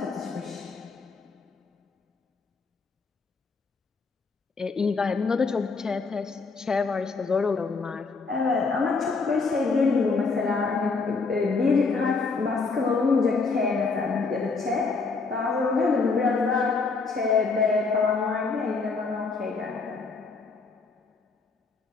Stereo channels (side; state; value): right; quieter; 4.4 dB